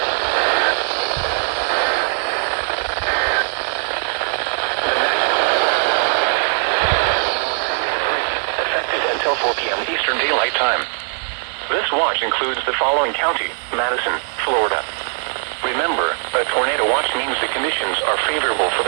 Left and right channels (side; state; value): left; silent; 61 dB below the other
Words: Effective until 4 p.m. Eastern Daylight Time. This watch includes the following county: Madison, Florida. Remember, a tornado watch means the conditions are favorable for